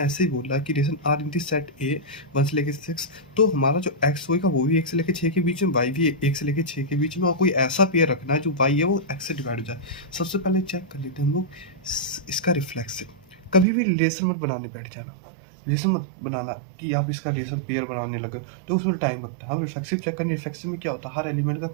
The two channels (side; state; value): left; drops out; at 13.7 s